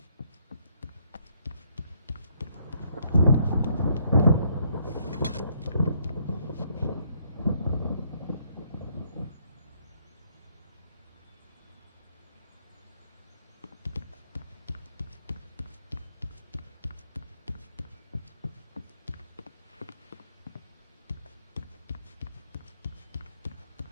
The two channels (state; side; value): inverted; both; correlation -0.70